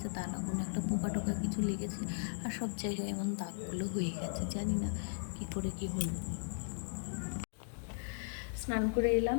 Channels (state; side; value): silent; right; digital silence